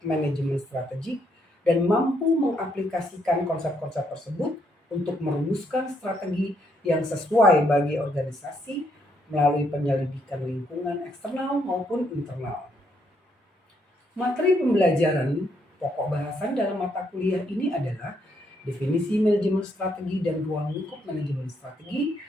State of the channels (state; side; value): normal; both; correlation 0.74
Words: strategik dan mampu mengaplikasikan konsep-konsep tersebut untuk merumuskan strategi yang sesuai bagi organisasi melalui penyelidikan lingkungan eksternal maupun internal. Materi pembelajaran pokok bahasan dalam mata kuliah ini adalah definisi manajemen strategi dan ruang lingkup manajemen strategi,